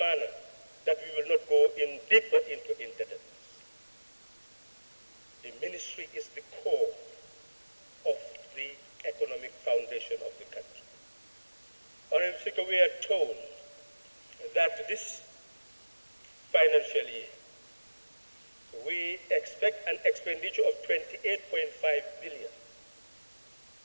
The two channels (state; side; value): inverted; both; correlation -1.00